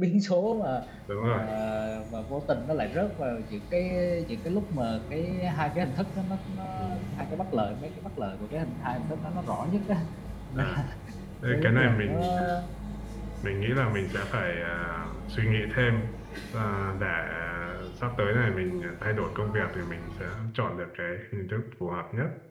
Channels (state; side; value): identical; both; correlation 1.00